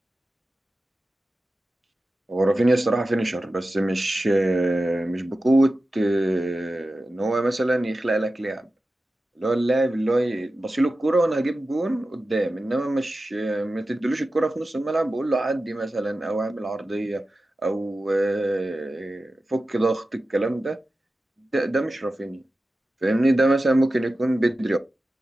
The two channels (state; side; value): normal; both; correlation 0.94